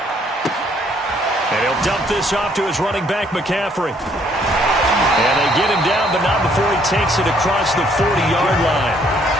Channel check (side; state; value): both; normal; correlation 0.66